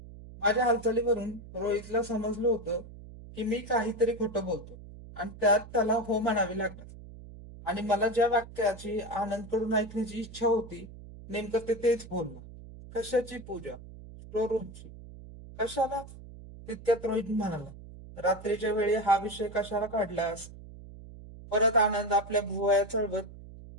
माझ्या हालचालीवरून रोहितला समजलं होतं की मी काहीतरी खोटं बोलतो आणि त्यात त्याला हो म्हणावे लागणार. आणि मला ज्या वाक्याची आनंदकडून ऐकण्याची इच्छा होती नेमकं ते तेच बोलला. कशाची पूजा? स्टोर रूमची. कशाला? तितक्यात रोहित म्हणाला, रात्रीच्या वेळी हा विषय कशाला काढलास? परत आनंद आपल्या भुवया चढवत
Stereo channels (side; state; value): right; noise; hum, 16 dB below the sound